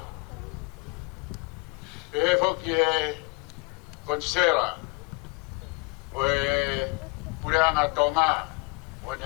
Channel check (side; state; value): right; quieter; 29.9 dB